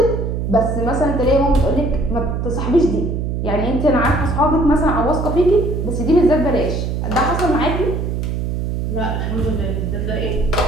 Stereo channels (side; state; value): right; noise; hum, 1 dB below the sound